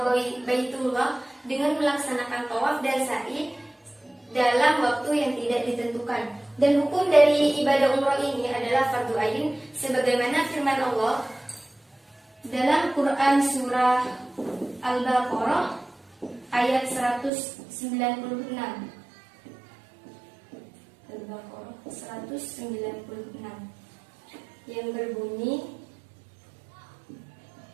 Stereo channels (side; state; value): left; drops out; at 17.3 s